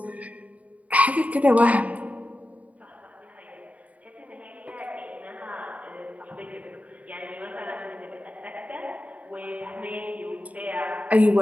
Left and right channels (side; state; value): left; late; 0.070 ms